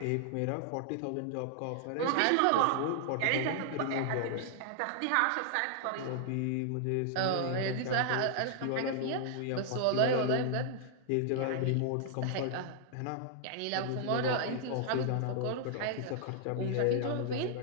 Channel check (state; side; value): different; both; correlation -0.01